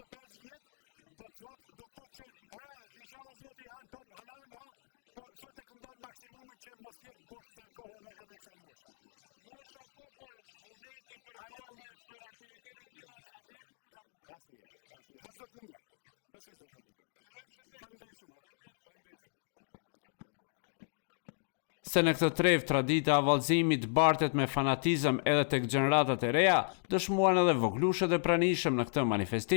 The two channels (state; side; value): silent; right; digital silence